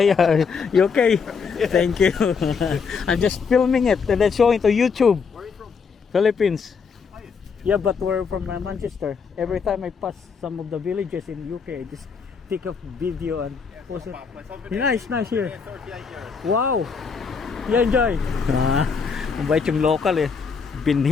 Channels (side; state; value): right; quieter; 5.6 dB